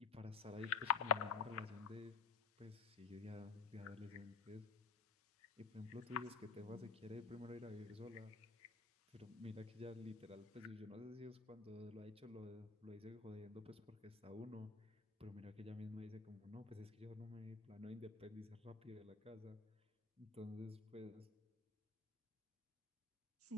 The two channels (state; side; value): quieter; right; 5.8 dB